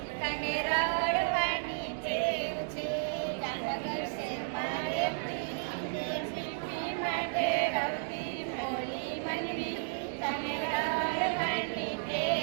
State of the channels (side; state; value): left; silent; digital silence